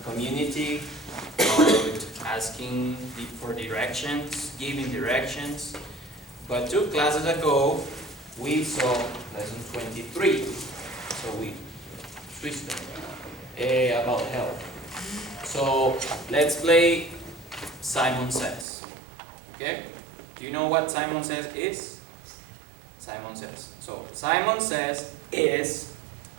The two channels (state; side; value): drops out; left; at 18.7 s